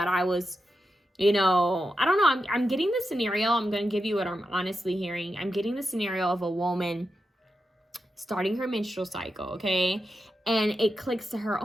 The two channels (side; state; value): both; normal; correlation 0.88